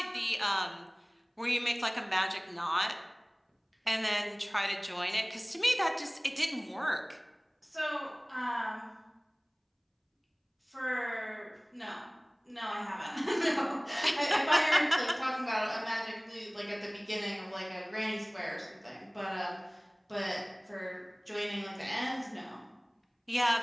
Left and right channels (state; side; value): identical; both; correlation 1.00